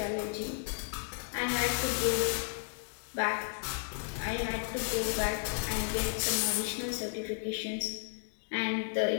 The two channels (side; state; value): right; silent; digital silence